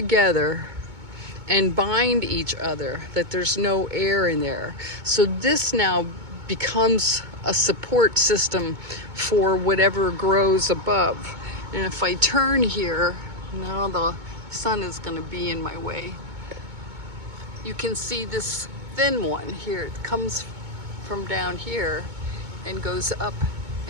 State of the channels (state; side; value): late; left; 2.2 ms